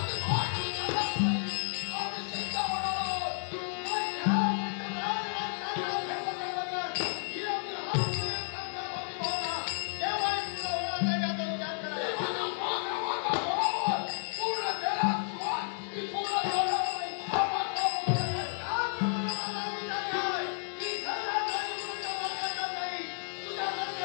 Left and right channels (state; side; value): silent; right; 56 dB below the other